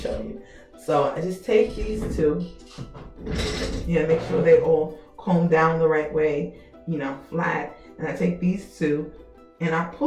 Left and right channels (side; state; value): both; identical; correlation 1.00